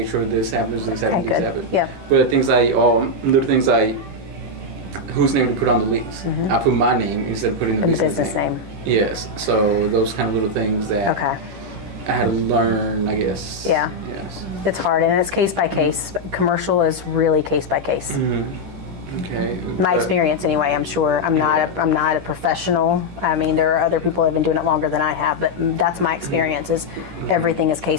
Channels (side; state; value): left; late; 10 ms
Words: sure this happens, this happens, Okay, this good. happens. Yep. But things like, little things like, whose name to put on the lease. I put my name instead of putting the business name. Yes. So those kind of little things that I had to learn, I guess. Yeah. Yes. It's hard, and it's case by case. Commercial is really case by case. Okay. My experience, anyway. I'm sure I'm not a professional. I mean, there are other people that have been doing it longer than I have, but that's my experience. Is everything is